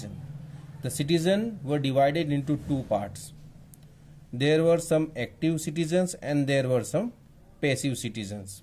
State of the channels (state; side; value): identical; both; correlation 1.00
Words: The citizen were divided into 2 parts. There were some active citizens and there were some passive citizens.